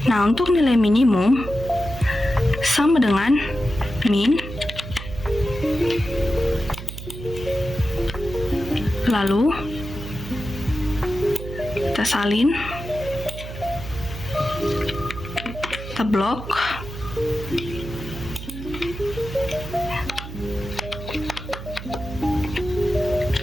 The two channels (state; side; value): noise; right; hum, 11 dB below the sound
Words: Nah, untuk nilai minimum sama dengan min, lalu kita salin, kita blok,